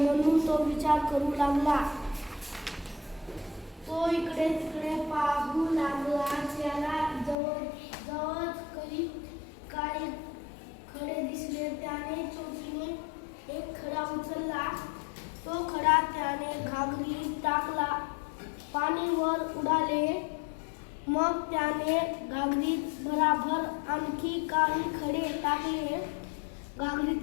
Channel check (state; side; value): drops out; right; at 7.4 s